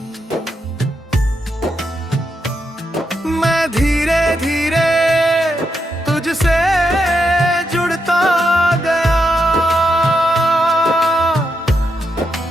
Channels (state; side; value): normal; both; correlation 0.83